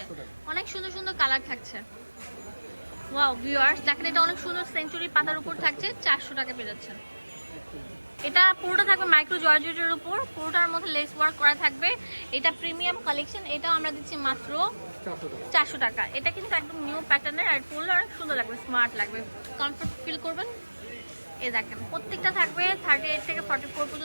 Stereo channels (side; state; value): both; inverted; correlation -1.00